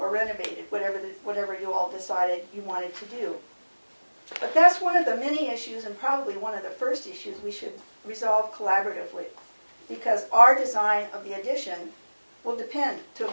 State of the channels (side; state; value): both; inverted; correlation -1.00